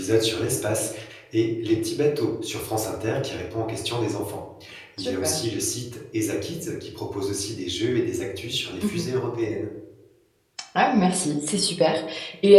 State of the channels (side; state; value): both; identical; correlation 1.00